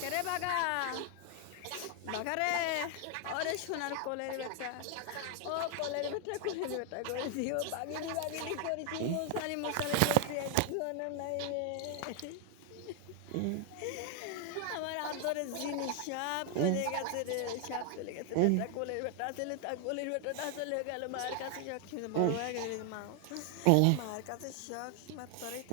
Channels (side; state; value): both; different; correlation 0.00